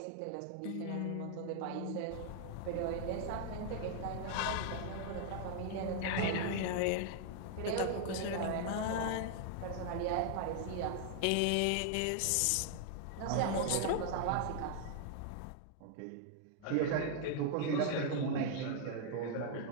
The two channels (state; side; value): different; both; correlation 0.00